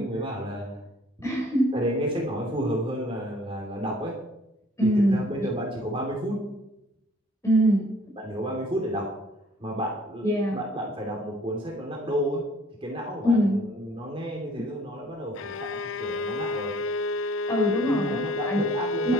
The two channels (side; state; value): both; normal; correlation 0.56